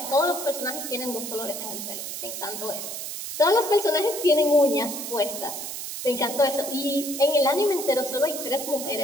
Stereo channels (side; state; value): right; noise; hiss, 7 dB below the sound